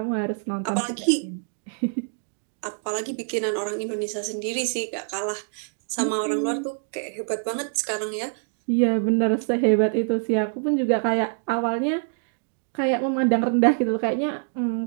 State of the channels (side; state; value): left; silent; 58 dB below the other